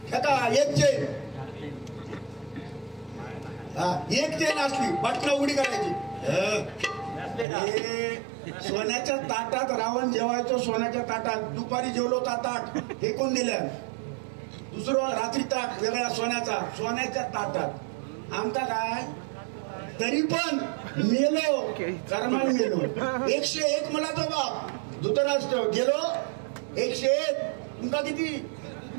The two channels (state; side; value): drops out; left; at 7.5 s